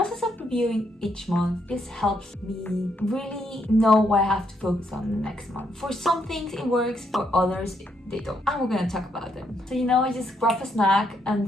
of reviewing each month just helps me really know what I have to focus on the next month. For some things it works, for others they don't, and we're gonna talk about them. So I just grab a snack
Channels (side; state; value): both; normal; correlation 0.76